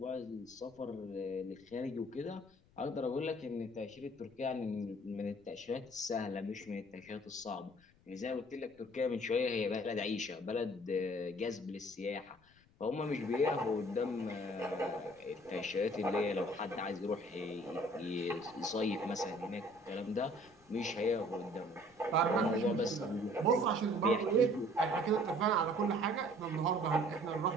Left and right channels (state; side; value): noise; left; rumble, 29 dB below the sound